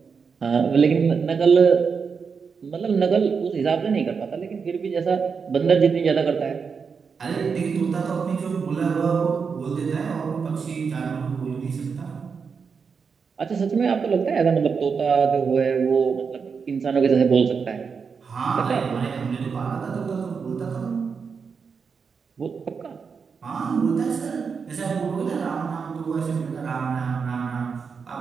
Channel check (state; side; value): quieter; left; 5.7 dB